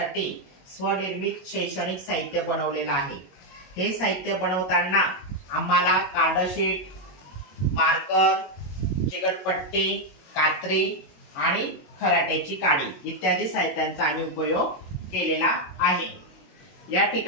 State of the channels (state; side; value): late; right; 22 ms